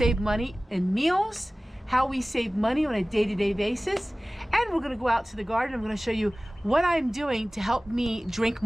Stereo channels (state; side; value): normal; both; correlation 0.98